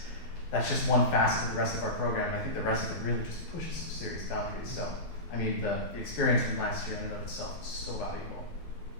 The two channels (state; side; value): late; right; 12 ms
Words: that's just one facet of the rest of our program. And I think the rest of it really just pushes some serious boundaries. So, I mean, the experience from last year in and of itself is so valuable.